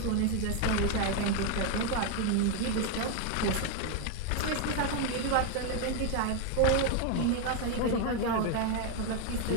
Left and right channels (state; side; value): different; both; correlation 0.01